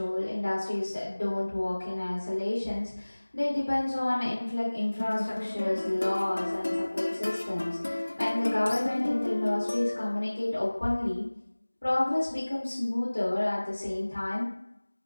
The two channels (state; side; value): inverted; both; correlation -1.00